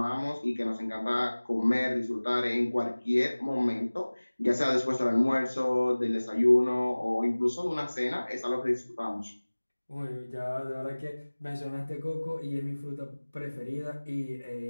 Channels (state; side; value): inverted; both; correlation -1.00